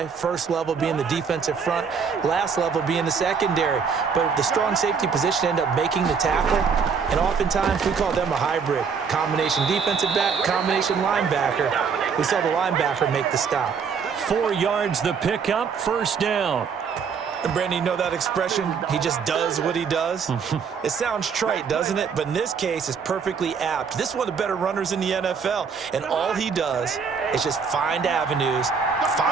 First level being the defensive front, last level being the secondary. But the strong safety position ended up making the tackle, and oftentimes we call them a hybrid. Combination defensive back, combination linebacker. We saw the linebacker make the stop. 4 yards the pickup, 1st down. And Brandon, you know that expression, he just does what he does? It sounds trite, doesn't it? But in this case, it's perfectly apt. This is one of the better runners in the NFL, and all he does is just find avenues,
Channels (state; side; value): quieter; left; 6.1 dB